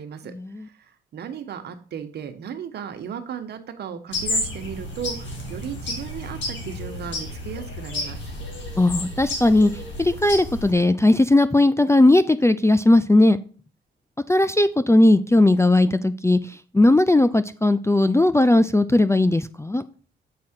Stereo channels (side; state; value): both; normal; correlation 0.90